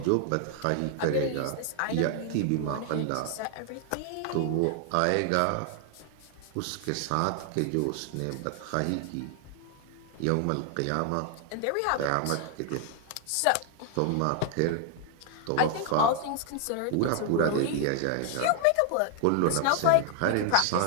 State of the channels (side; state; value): both; different; correlation 0.00